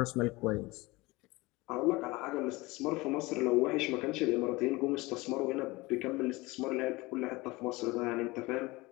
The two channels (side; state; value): right; quieter; 22.3 dB